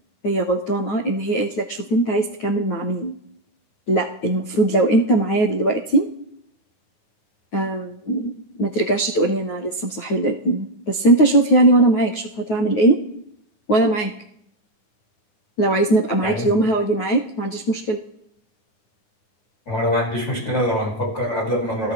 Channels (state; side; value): late; right; 9.4 ms